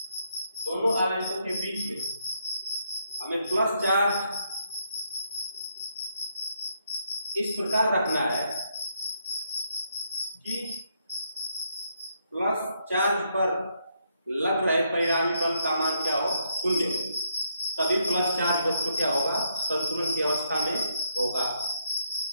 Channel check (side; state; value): both; inverted; correlation -0.75